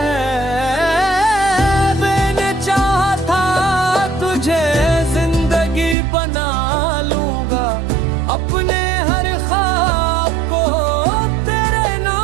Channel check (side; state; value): left; drops out; at 6.0 s